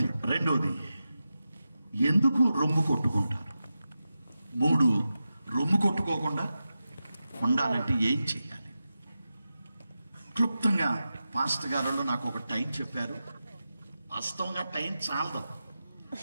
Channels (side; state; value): both; inverted; correlation -0.92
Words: 2, ఎందుకు రొమ్ము కొట్టుకుంటారు? 3, రొమ్ము కొట్టుకోకుండా ఉండాలంటే ఏం చేయాలి? క్లుప్తంగా పాస్టర్ గారు నాకు ఒక టైం చెప్పారు. వాస్తవంగా టైం చాలదు,